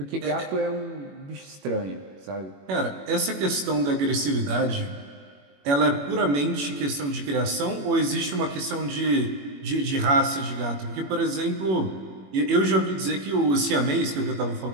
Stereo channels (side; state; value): left; late; 21 ms